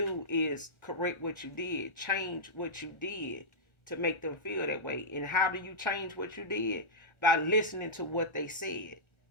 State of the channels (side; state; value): right; late; 1.4 ms